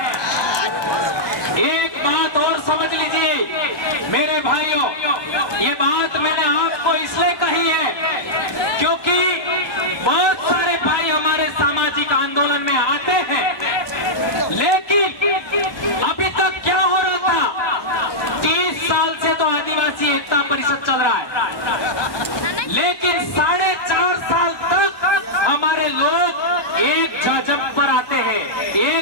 बात मैंने आपको इसलिए कही है क्योंकि बहुत सारे भाई हमारे सामाजिक आंदोलन में आते हैं, लेकिन अभी तक क्या हो रहा था, 30 साल से तो आदिवासी एकता परिषद चल रहा है, लेकिन 4.5 साल तक हमारे लोग एक जाजम पर आते हैं,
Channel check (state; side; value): late; right; 1.2 ms